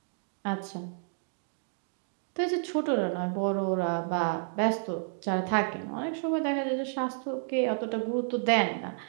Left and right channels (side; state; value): left; silent; digital silence